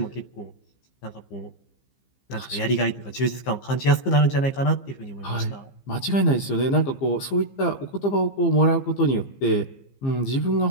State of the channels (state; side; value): late; right; 15 ms